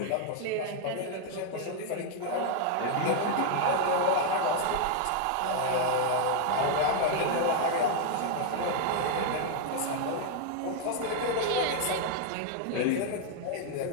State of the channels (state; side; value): different; both; correlation 0.00